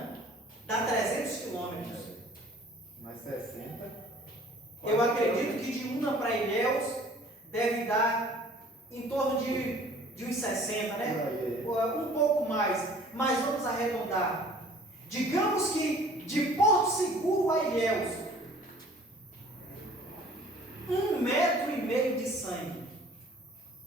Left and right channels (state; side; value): normal; both; correlation 0.52